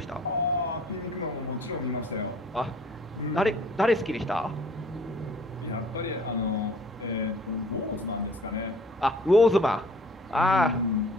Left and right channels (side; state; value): both; normal; correlation 0.52